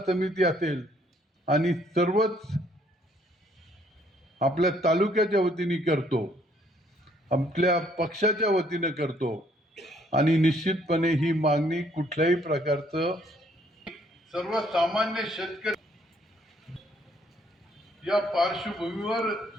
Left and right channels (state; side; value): normal; both; correlation 0.66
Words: समिती असेल आणि सर्वच आपल्या तालुक्याच्या वतीने करतो, आपल्या पक्षाच्या वतीने करतो आणि निश्चितपणे ही मागणी कुठल्याही प्रकारचं सर्वसामान्य शेतकरी या पार्श्वभूमीवर